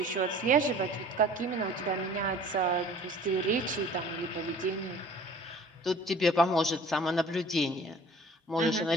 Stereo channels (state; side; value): normal; both; correlation 0.48